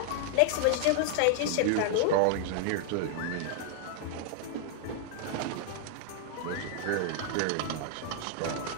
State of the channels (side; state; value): both; different; correlation 0.00